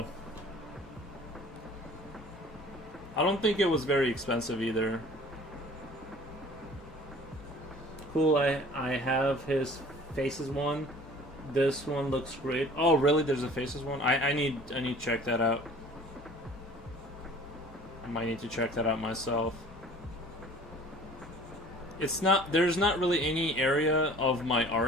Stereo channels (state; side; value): normal; both; correlation 0.47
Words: I don't think it was very expensive either. Cool, I have his Faces one. This one looks great. Oh, really? There's a Faces one? I need to check that out. I might need to check that out myself. There's not really any area of my